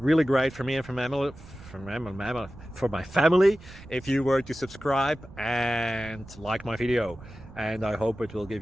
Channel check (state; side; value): noise; right; rumble, 18 dB below the sound